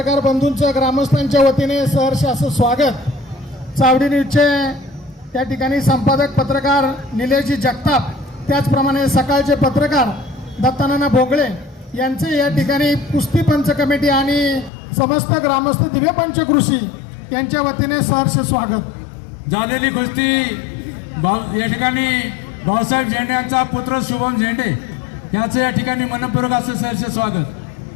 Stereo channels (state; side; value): drops out; right; at 14.7 s